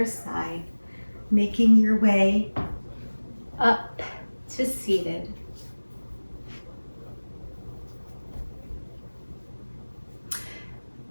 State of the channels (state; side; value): inverted; both; correlation -1.00